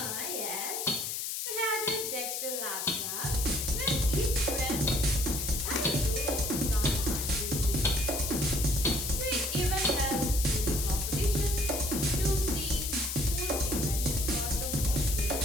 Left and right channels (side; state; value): left; noise; hiss, 3 dB below the sound